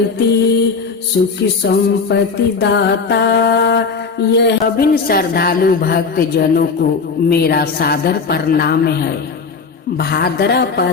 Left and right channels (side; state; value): right; quieter; 4.9 dB